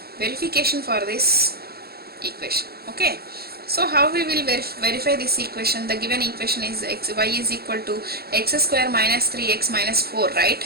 Verification for this equation. Okay. So how we will verify this equation? The given equation is y is equal to x square minus 3x minus 4, right?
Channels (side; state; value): left; late; 0.46 ms